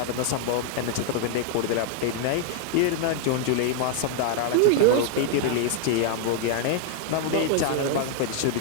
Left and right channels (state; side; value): different; both; correlation 0.00